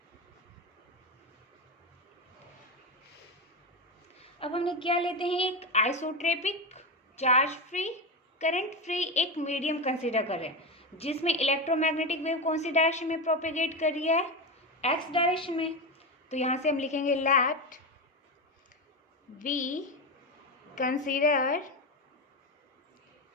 अब हमने क्या लेते हैं? एक isotropic charge free current free एक मीडियम कंसीडर कर रहे हैं जिसमें इलेक्ट्रोमैग्नेटिक वेव कौन सी डायरेक्शन में प्रोपेगेट कर रही है? एक्स डायरेक्शन में। तो यहाँ से हम लिखेंगे let we consider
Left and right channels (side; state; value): both; normal; correlation 0.16